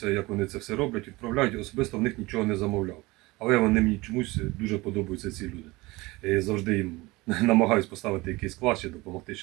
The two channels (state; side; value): quieter; left; 21.9 dB